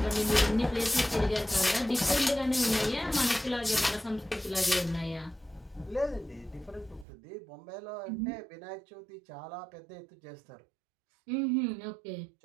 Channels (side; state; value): left; drops out; at 7.1 s